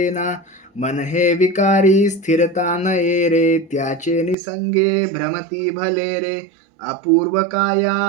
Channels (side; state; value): left; drops out; at 4.4 s